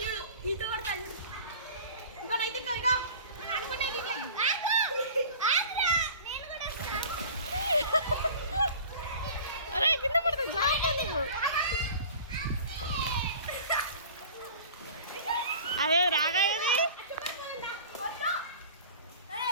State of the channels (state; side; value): inverted; both; correlation -0.42